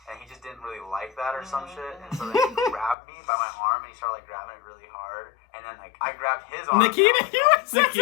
And he just didn't really like that or some shit. And so then he grabbed me by my arm and he started like grabbing it really hard. And then like I grabbed his arm.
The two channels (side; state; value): right; drops out; at 3.0 s